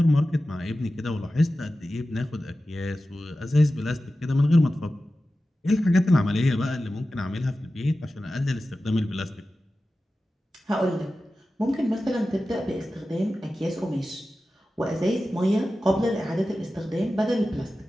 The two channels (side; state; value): both; normal; correlation 0.94